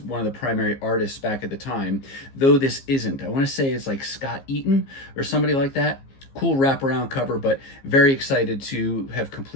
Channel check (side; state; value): right; late; 15 ms